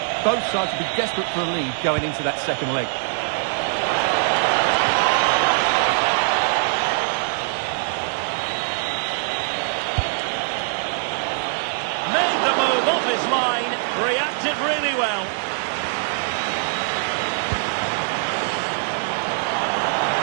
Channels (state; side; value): silent; left; digital silence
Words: Both sides will be desperate for a lead going into that second leg. Made the move off his line, reacted really well.